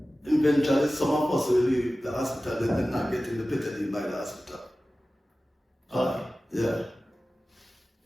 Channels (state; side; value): normal; both; correlation 0.96